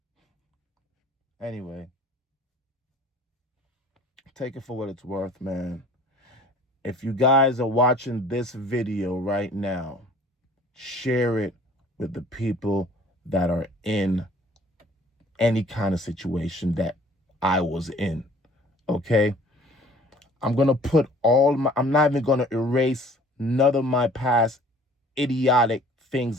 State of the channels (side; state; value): both; normal; correlation 0.52